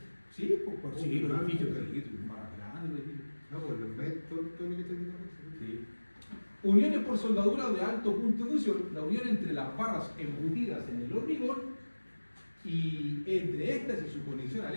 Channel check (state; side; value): inverted; both; correlation -1.00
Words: Sí, pues sí, los edificios más grandes. No, pues los ves todo lo que está diciendo. Sí. Uniones por soldadura de alto punto de fusión, la unión entre las barras embutidas en el hormigón y entre estas y su conexión al